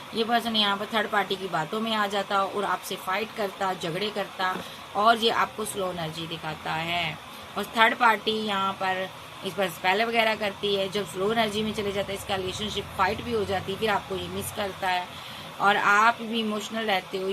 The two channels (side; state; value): both; identical; correlation 1.00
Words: ये पर्सन यहाँ पर थर्ड पार्टी की बातों में आ जाता और आपसे फाइट करता, झगड़े करता, और ये आपको स्लो एनर्जी दिखाता है। और थर्ड पार्टी यहाँ पर इस पर स्पेल वगैरह करती है। जब स्लो एनर्जी में चले जाता है, इसका रिलेशनशिप फाइट भी हो जाती है, फिर आपको ये मिस करता है, और आप भी इमोशनल रहते हो।